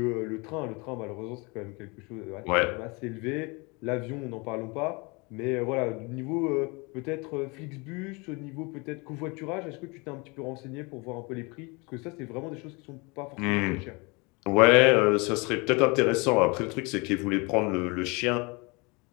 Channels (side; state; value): right; quieter; 28.3 dB